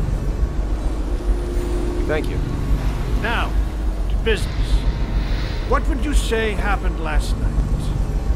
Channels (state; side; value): identical; both; correlation 1.00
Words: Thank you. Now, to business. What would you say happened last night?